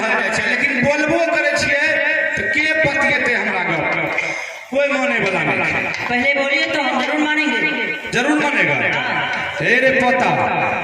जाए छै, लेकिन बोलबो करे छिए तो के पतिएते हमरा गप कोई माने वाला नहीं। पहले बोलिए तो हम जरूर मानेंगे। जरूर मानेगा। हे रे पता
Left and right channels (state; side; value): identical; both; correlation 1.00